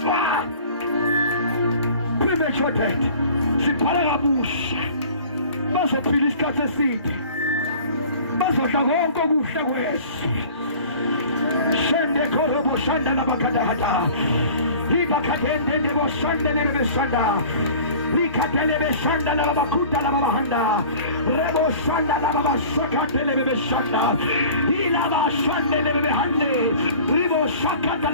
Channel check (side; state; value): both; inverted; correlation -0.45